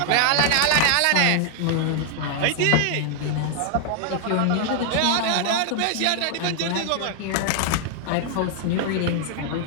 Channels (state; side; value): different; both; correlation 0.00